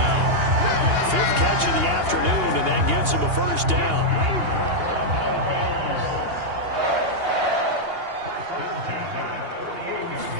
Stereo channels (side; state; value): left; late; 2.8 ms